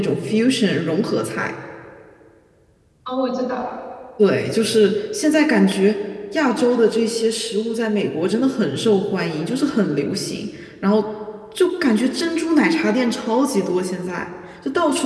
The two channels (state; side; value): identical; both; correlation 1.00